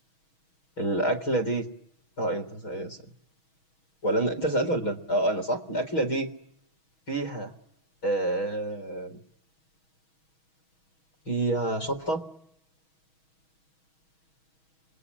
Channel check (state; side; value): late; right; 6.3 ms